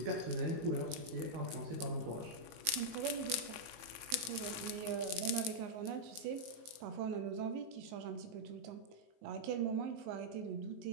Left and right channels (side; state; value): left; late; 19 ms